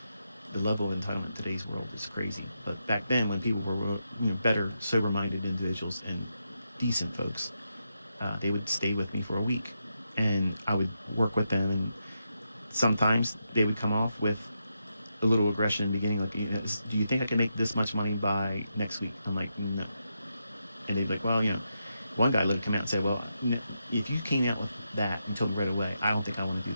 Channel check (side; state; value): both; inverted; correlation -0.84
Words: The level of entitlement in today's world is crazy. But back then, when people were better, sober-minded individuals and decent folks, they would stay with me for a week, and I would work with them. And sometimes they would come off with a little aggression in the beginning, like, do you think I can make this much money by next week? I'm like, no. And they'd be like, well, one guy would come out and say, well, if you came out with that and told me right away, I don't think I want to do